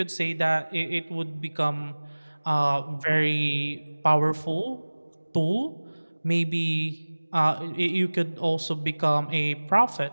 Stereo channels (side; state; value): both; inverted; correlation -1.00